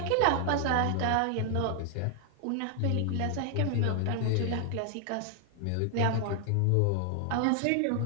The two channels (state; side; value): different; both; correlation 0.00